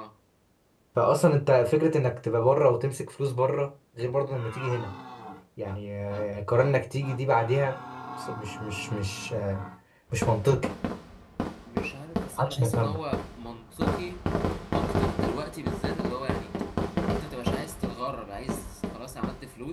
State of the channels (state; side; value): identical; both; correlation 1.00